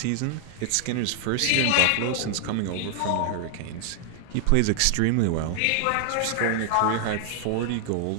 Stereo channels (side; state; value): both; different; correlation 0.00